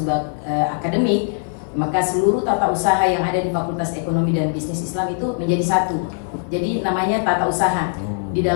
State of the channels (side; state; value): right; silent; 58 dB below the other